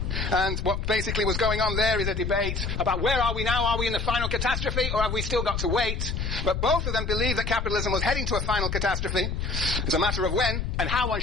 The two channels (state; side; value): noise; left; rumble, 2 dB below the sound